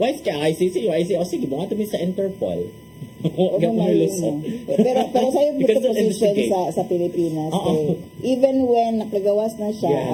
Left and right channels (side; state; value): both; identical; correlation 1.00